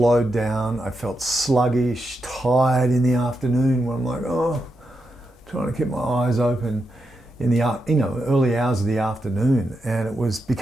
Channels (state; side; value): normal; both; correlation 0.85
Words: down. I felt sluggish, tired in the afternoon when I'm like, trying to keep my eyes open in the early hours of the afternoon, and it was